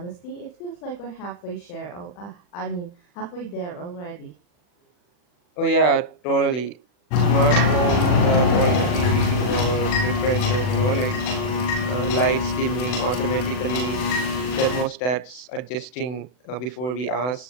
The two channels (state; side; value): late; right; 40 ms